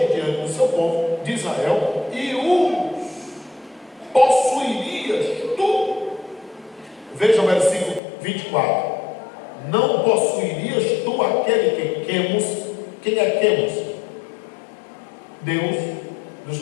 diante do seu povo de Israel, e os possuirias tu. Veja o versículo 24. Não possuirias tu aquele que Quemos? Quem é Quemos? Deus dos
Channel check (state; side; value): drops out; right; at 8.0 s